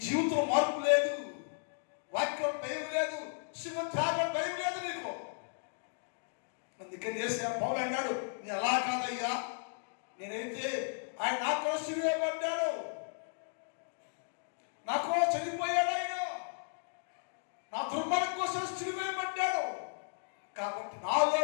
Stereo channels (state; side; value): silent; right; digital silence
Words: జీవితంలో మార్పు లేదు, వాక్యం భయం లేదు, శివం త్యాగం భయం లేదు నీకు. అందుకని చేసే పౌలు అన్నాడు, నేను అలా కాదయ్యా, నేనైతే ఆయన నా కోసం సిలువేయబడ్డాడు, నా కోసం చనిపోయాడు, ఆయన నా దుర్మార్గం కోసం సిలువేయబడ్డాడు. కాబట్టి నాలో